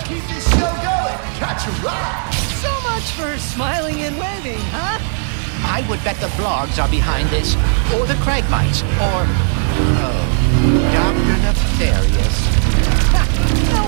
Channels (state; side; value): silent; left; 60 dB below the other